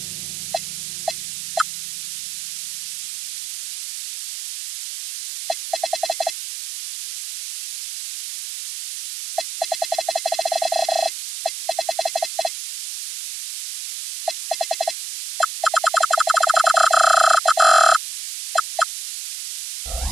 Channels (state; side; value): noise; right; hiss, 8 dB below the sound